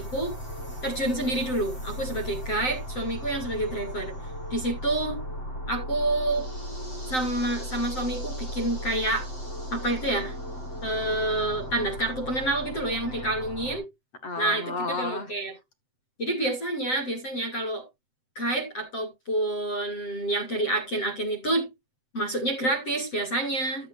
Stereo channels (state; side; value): late; right; 7.8 ms